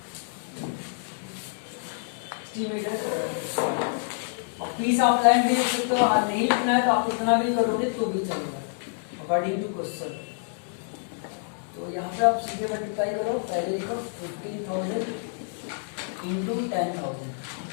metre. Piece of land भी लिख सकते हो, नहीं लिखना है तो आप इतना भी करोगे तो भी चलेगा अकॉर्डिंग टू क्वेश्चन। तो यहाँ पे आप सीधे मल्टीप्लाई करो, पहले लिखो 15,000 इंटू 10,000।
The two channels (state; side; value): silent; right; 60 dB below the other